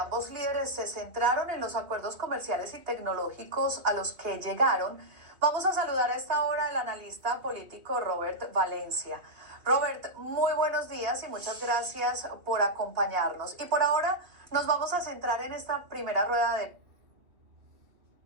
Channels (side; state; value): left; late; 2.9 ms